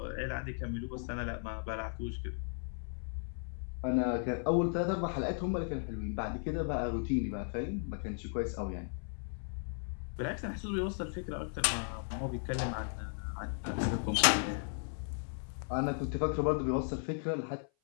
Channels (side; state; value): right; silent; 54 dB below the other